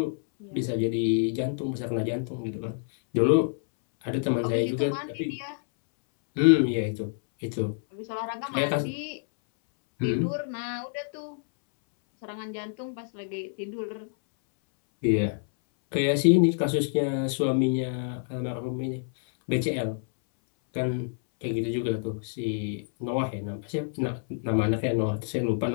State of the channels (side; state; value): right; silent; 60 dB below the other